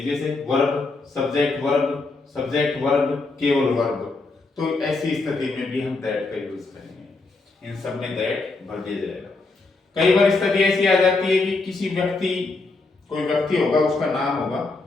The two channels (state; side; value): quieter; right; 3.6 dB